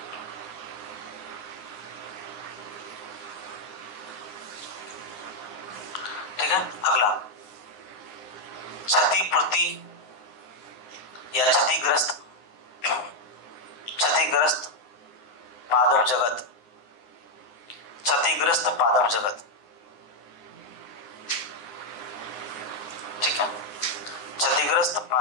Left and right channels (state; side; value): late; right; 9.6 ms